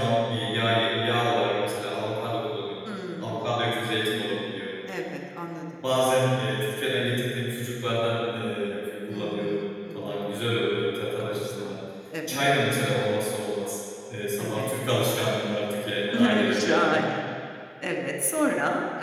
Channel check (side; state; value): both; identical; correlation 1.00